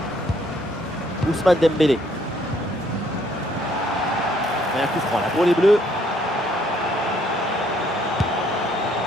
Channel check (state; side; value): normal; both; correlation 0.66